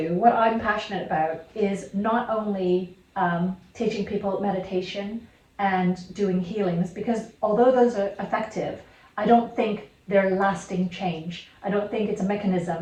what I'm passionate about, is not only teaching people meditation and doing healings, because although those are effective, I don't think they're lasting change. I don't think it's a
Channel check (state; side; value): identical; both; correlation 1.00